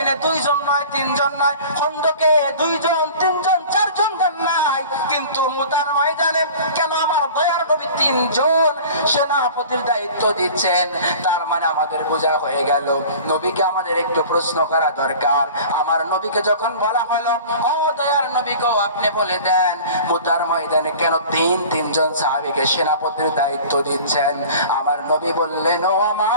2 জন নয়, 3 জন নয়, খন্দকে 2 জন, 3 জন, 4 জন দেন নাই, কিন্তু মুতার ময়দানে কেন আমার দয়ার নবী 3 জন সেনাপতির দায়িত্ব দিচ্ছেন? তার মানে আমাদের বোঝা হয়ে গেল, নবীকে আমাদের একটু প্রশ্ন করা দরকার। আমার নবীকে যখন বলা হলো, ও দয়ার নবী গো, আপনি বলে দেন মুতার ময়দানে কেন 3 জন সাহাবীকে সেনাপতির দায়িত্ব দিচ্ছেন? আমার নবী বললেন, ও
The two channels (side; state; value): both; inverted; correlation -0.42